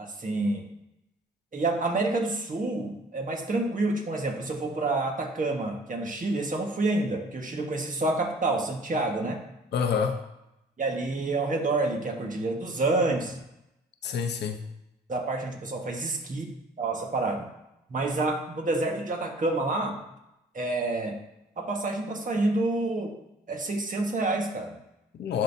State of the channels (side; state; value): both; normal; correlation 0.50